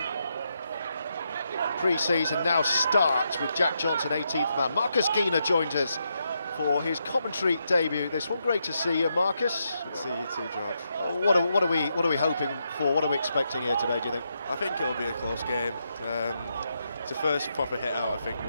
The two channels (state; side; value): inverted; both; correlation -0.82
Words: pre-season, now starts with Jack Johnson, 18th man. Marcus Keener joined us for his commentary debut this one. Great to see you, Marcus. Good to see you too, George. What are we hoping for? What are we expecting here today, do you think? I think it'll be a close game. It's the first proper hit out, I think,